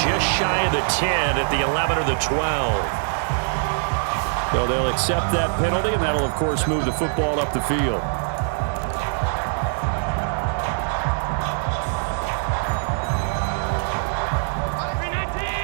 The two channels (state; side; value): silent; left; digital silence